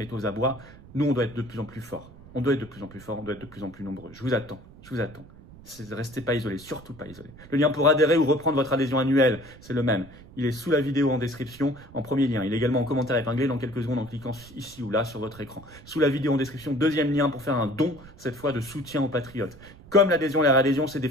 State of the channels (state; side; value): noise; right; rumble, 20 dB below the sound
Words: est aux abois. Nous, on doit être de plus en plus forts. On doit être de plus en plus forts, on doit être de plus en plus nombreux. Je vous attends, je vous attends. Restez pas isolés, surtout pas isolés. Le lien pour adhérer ou reprendre votre adhésion annuelle, c'est le même. Il est sous la vidéo en description, en premier lien. Il est également en commentaire épinglé dans quelques secondes en cliquant ici ou là sur votre écran. Sous la vidéo en description, deuxième lien pour faire un don, cette fois de soutien aux patriotes. Comme l'adhésion et la réadhésion, c'est